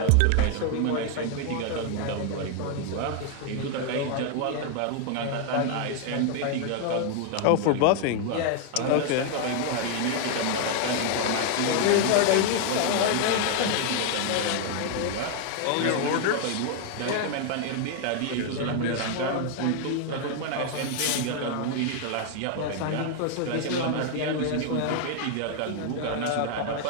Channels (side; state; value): both; different; correlation 0.00